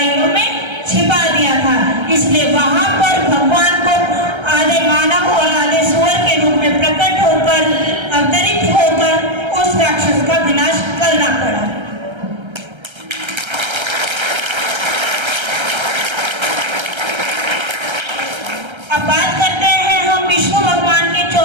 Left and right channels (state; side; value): late; left; 1.3 ms